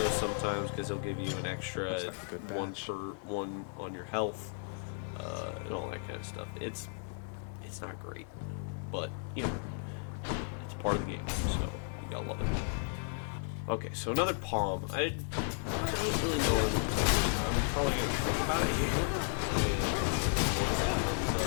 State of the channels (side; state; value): right; silent; 55 dB below the other